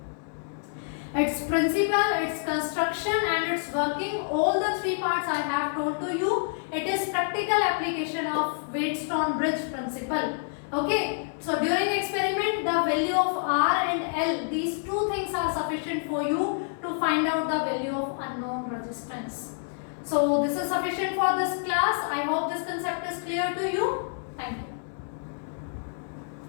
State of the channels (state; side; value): silent; right; digital silence